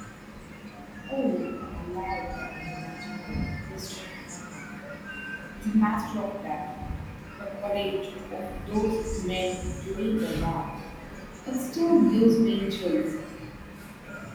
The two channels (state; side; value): identical; both; correlation 1.00